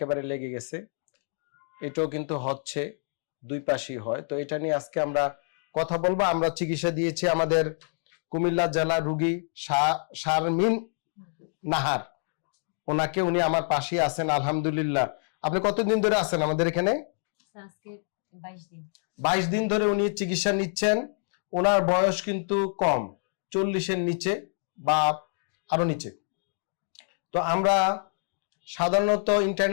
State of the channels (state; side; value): silent; right; 60 dB below the other